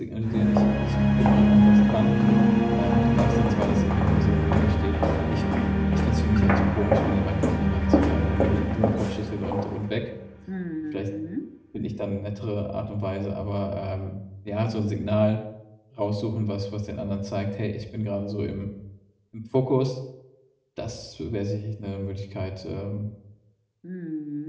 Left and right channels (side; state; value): both; identical; correlation 1.00